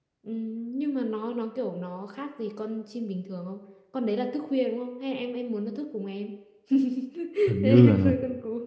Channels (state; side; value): identical; both; correlation 1.00